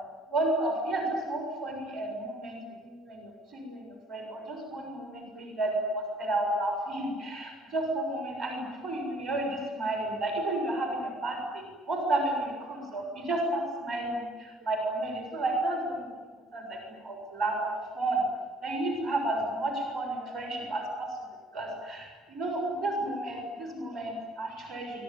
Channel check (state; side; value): normal; both; correlation 0.58